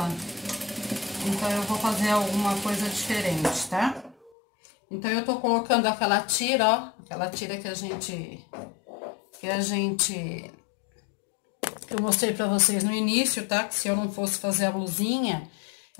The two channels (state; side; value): drops out; right; at 4.3 s